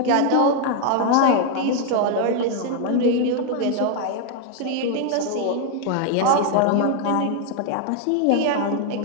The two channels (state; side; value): different; both; correlation 0.01